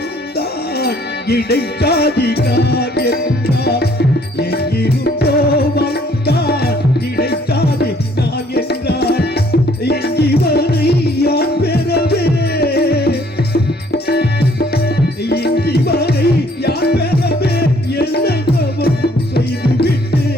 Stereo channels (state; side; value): normal; both; correlation 0.61